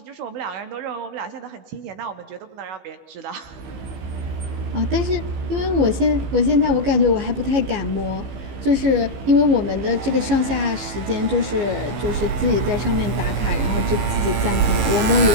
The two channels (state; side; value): late; left; 15 ms